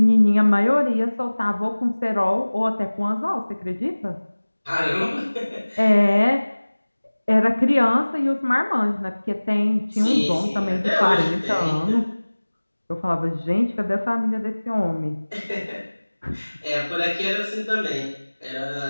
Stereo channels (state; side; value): inverted; both; correlation -1.00